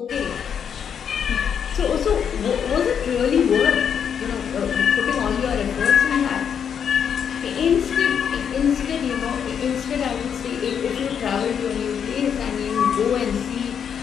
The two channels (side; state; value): right; quieter; 7.8 dB